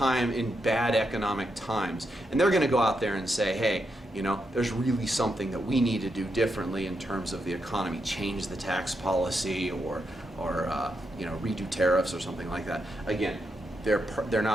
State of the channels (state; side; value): normal; both; correlation 0.83